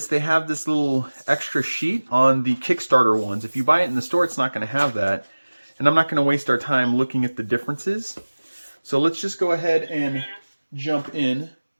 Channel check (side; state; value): both; inverted; correlation -1.00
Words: They have this little extra sheet on the Kickstarter ones. If you buy it in the store, it's not going to have that. And I'm not going to waste our time looking at the differences. So let's just go ahead and jump in